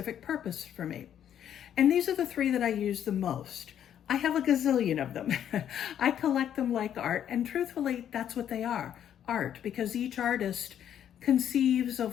purpose for me, and these are the 3 that I use the most. I have a gazillion of them. I collect them like art, and truthfully that's what they are, art, because each artist conceives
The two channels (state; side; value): quieter; right; 9.9 dB